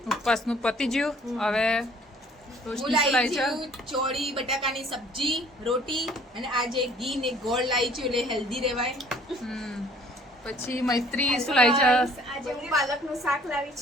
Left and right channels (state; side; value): normal; both; correlation 0.56